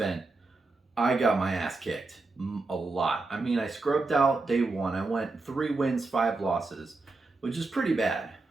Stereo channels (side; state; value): left; quieter; 3.5 dB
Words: I got my ass kicked a lot. I mean, I scrubbed out day one. I went 3 wins, 5 losses, which is pretty bad.